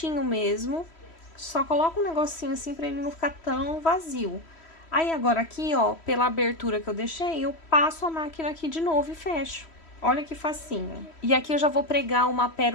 mesmo, só coloca um negocinho assim pra ele não ficar tão vazio. Aí, agora aqui, ó, pela abertura que eu deixei, eu passo a máquina aqui de novo e fecho. Olha que facinho. E aqui eu já vou pregar uma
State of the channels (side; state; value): right; late; 3.1 ms